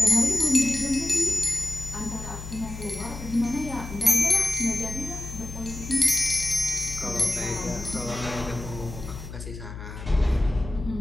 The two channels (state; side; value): noise; left; hum, 11 dB below the sound